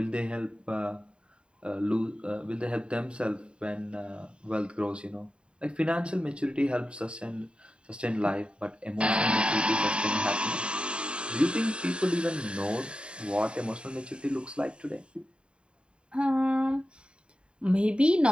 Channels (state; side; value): late; left; 0.053 ms